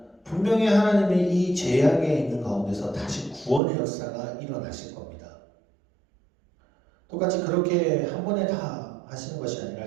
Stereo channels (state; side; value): drops out; left; at 3.6 s